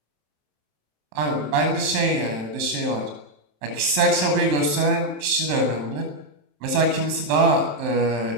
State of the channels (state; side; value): late; left; 27 ms